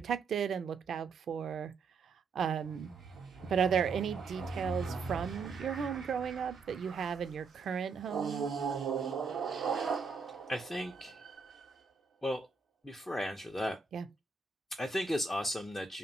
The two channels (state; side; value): quieter; left; 4.7 dB